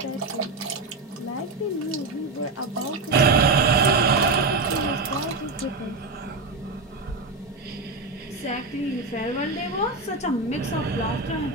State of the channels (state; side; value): quieter; left; 3.5 dB